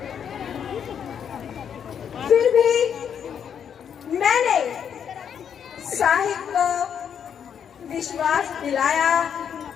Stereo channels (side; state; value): right; quieter; 8.1 dB